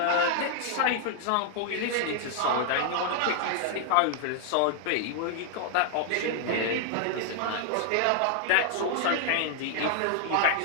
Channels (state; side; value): different; both; correlation 0.00